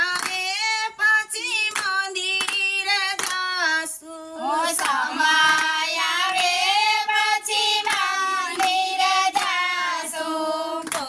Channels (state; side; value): identical; both; correlation 1.00